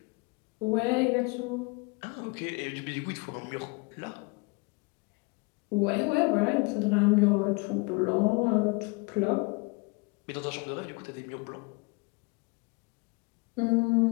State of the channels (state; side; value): quieter; right; 28.9 dB